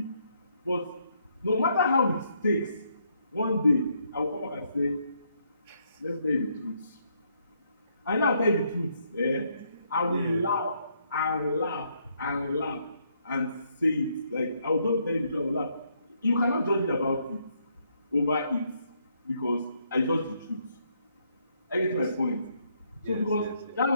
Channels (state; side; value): inverted; both; correlation -0.73